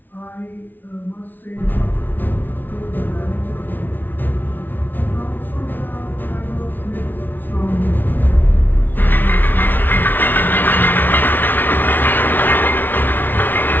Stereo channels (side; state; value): right; late; 0.090 ms